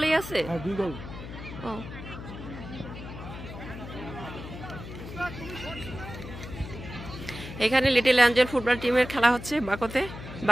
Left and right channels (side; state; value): left; noise; hum, 11 dB below the sound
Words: আছে? হ্যাঁ 2 গোল। ও এখানে লিটল অ্যাঞ্জেল ফুটবল টিমের খেলা হচ্ছে বাকোতে,